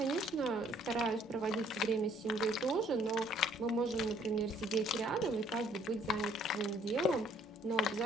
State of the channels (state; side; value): normal; both; correlation 0.61